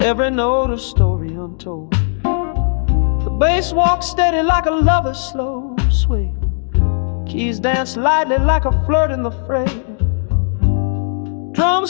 Every note a story untold. The bass walks steady like a lover's slow sway. Keys dance lightly like a flirt in the fray.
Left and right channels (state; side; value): silent; right; digital silence